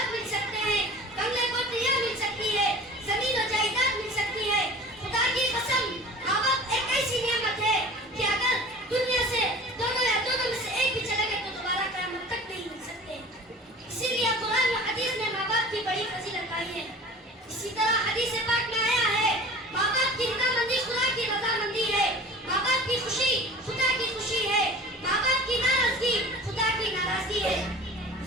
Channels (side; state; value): both; normal; correlation 0.41